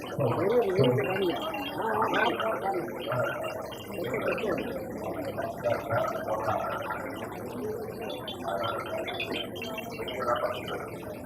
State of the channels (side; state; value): both; identical; correlation 1.00